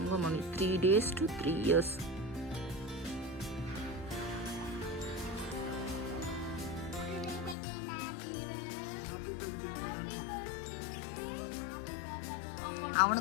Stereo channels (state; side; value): drops out; right; at 7.6 s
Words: 3 days to 3 years.